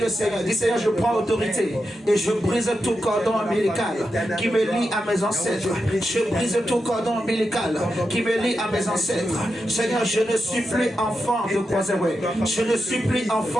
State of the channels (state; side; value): normal; both; correlation 0.88